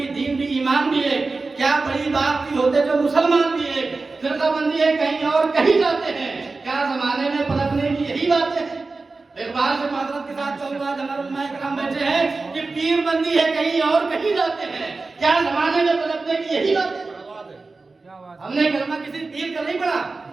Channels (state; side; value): quieter; left; 3.8 dB